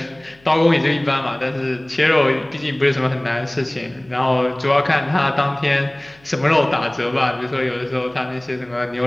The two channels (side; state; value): left; noise; hum, 30 dB below the sound